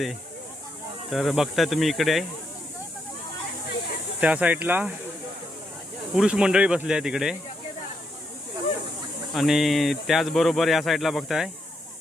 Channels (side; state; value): both; normal; correlation 0.80